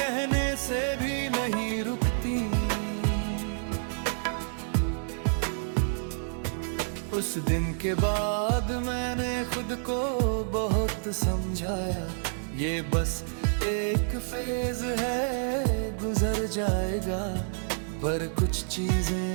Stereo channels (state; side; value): silent; left; 59 dB below the other